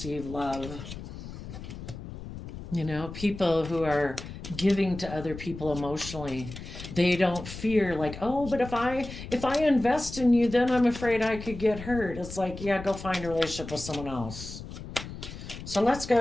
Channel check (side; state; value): left; noise; rumble, 11 dB below the sound